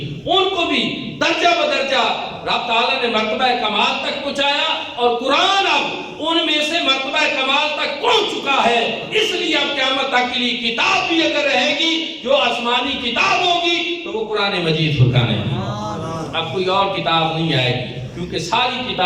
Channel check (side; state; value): both; identical; correlation 1.00